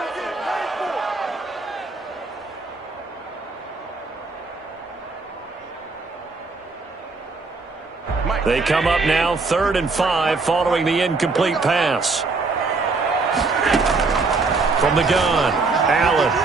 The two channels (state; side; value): quieter; left; 3.9 dB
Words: They come up now 3rd and 5 following the incomplete pass. From the gun, Allen.